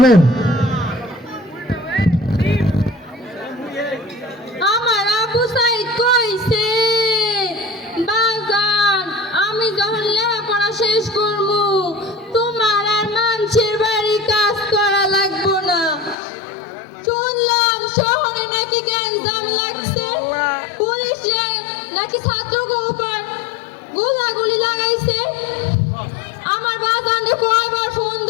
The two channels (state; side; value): drops out; right; at 16.2 s